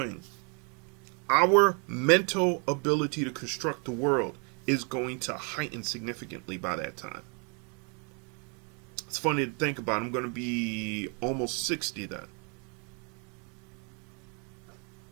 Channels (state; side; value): quieter; left; 36.1 dB